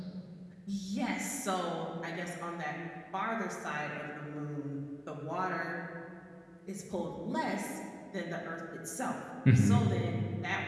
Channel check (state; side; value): identical; both; correlation 1.00